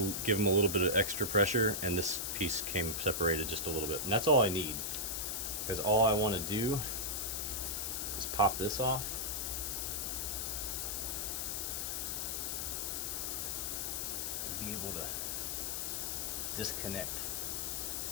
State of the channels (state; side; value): noise; left; hiss, 1 dB below the sound